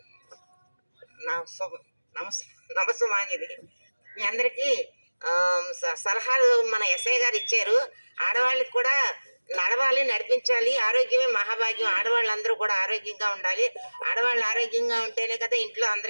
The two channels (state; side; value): inverted; both; correlation -1.00